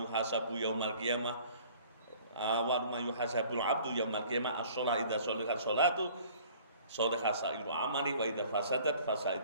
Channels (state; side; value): inverted; both; correlation -0.52